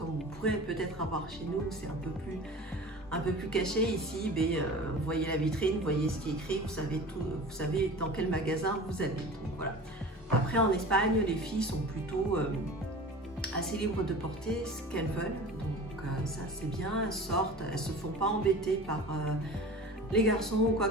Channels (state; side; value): normal; both; correlation 0.38